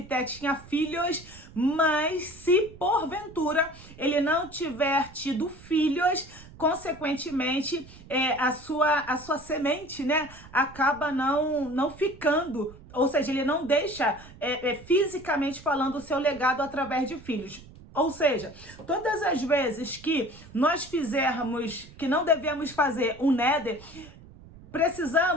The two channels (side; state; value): right; noise; rumble, 20 dB below the sound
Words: tinha filhos, mas se, porventura, ele não tiver tido filhos, consequentemente, a sua semente, né, acaba não ficando, ou seja, ele não deixa, fisicamente falando, o seu legado através de filhos. Ou seja, todas as vezes que nós fizermos, que não devemos fazer um neder,